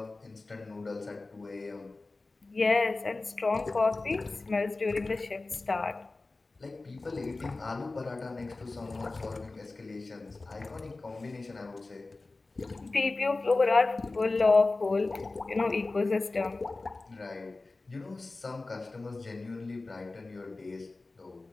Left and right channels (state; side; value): quieter; right; 3.4 dB